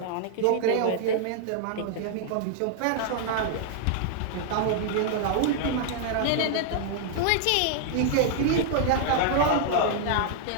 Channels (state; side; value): different; both; correlation -0.01